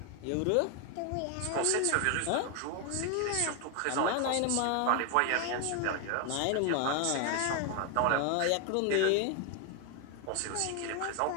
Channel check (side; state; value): both; different; correlation 0.01